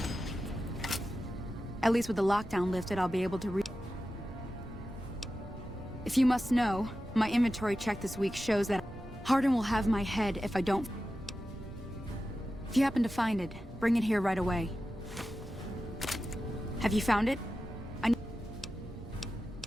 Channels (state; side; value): normal; both; correlation 0.93